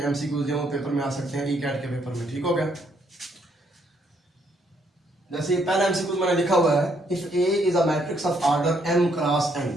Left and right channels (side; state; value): both; normal; correlation 0.71